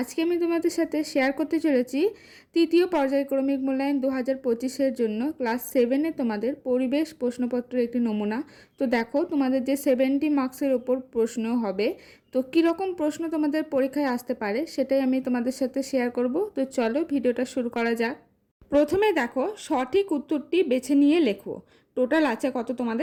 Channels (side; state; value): both; identical; correlation 1.00